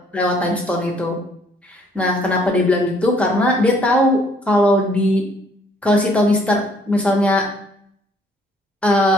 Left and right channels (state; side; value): normal; both; correlation 0.63